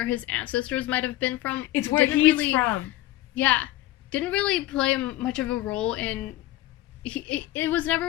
his ancestors might have been from. It's where he's from. Yeah. Didn't really play much of a role in it was never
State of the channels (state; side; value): quieter; right; 15.7 dB